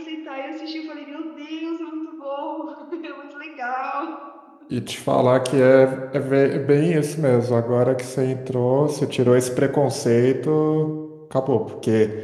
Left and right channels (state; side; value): identical; both; correlation 1.00